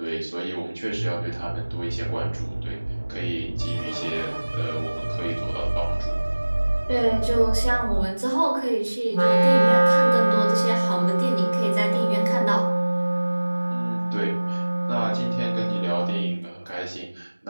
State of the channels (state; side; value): inverted; both; correlation -1.00